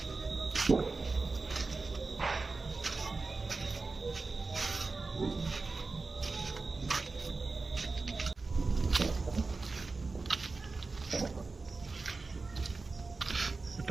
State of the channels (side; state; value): left; quieter; 3.9 dB